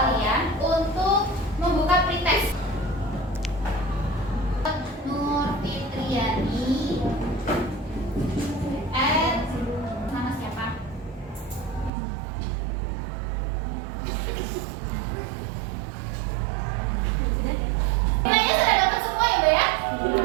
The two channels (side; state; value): left; drops out; at 11.9 s